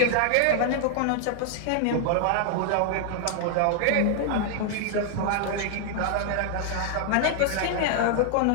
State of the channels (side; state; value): both; different; correlation 0.00